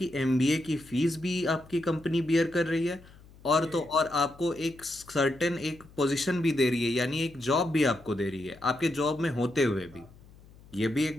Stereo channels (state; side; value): noise; left; hum, 23 dB below the sound